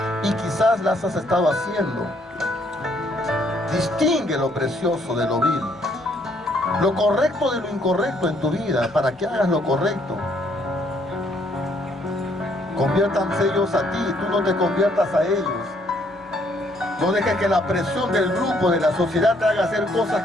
y quizás las has estado haciendo. Distingue lo precioso de lo vil, lo correcto de lo incorrecto en tu vida, para que hagas lo correcto. Conviértanse ellos a ti, tú no te conviertas a ellos. No dejes que la presión del grupo, de la sociedad, te haga hacer cosas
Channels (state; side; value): normal; both; correlation 0.67